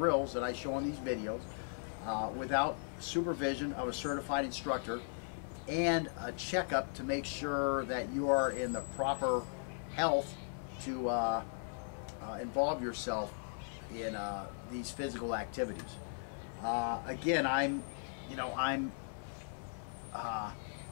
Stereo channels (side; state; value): right; silent; 53 dB below the other